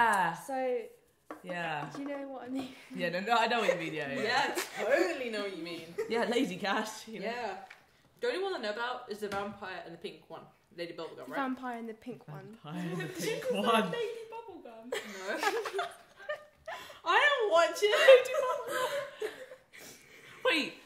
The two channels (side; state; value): both; identical; correlation 1.00